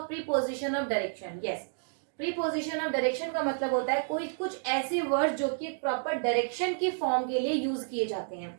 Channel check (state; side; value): silent; left; digital silence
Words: preposition of direction? Yes, preposition of direction का मतलब होता है कोई कुछ ऐसे वर्ड जो कि प्रॉपर डायरेक्शन की फॉर्म के लिए यूज किए जाते हैं।